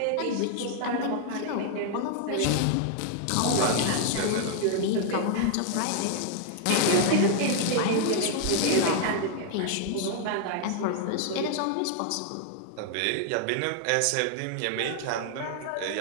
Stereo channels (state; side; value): different; both; correlation 0.00